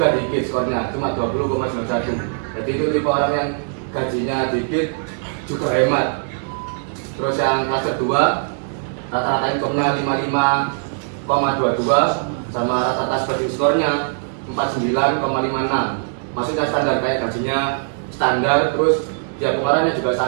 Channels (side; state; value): left; silent; 65 dB below the other